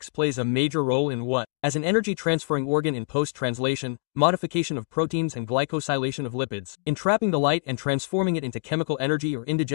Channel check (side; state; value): right; silent; digital silence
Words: plays a major role in what? As an energy transferring organ in post-translation, modification of proteins and glycosylation of lipids, in trapping the light and transforming it into chemical energy or